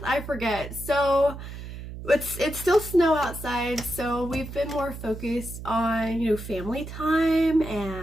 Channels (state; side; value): noise; right; hum, 10 dB below the sound